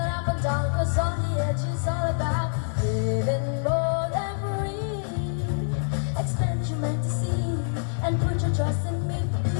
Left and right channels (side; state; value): right; silent; digital silence